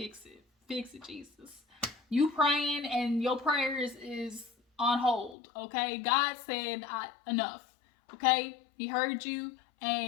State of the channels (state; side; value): drops out; right; at 5.4 s